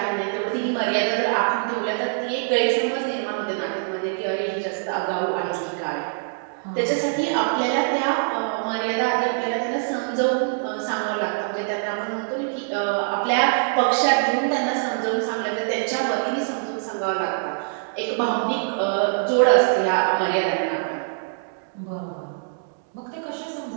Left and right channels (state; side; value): silent; left; digital silence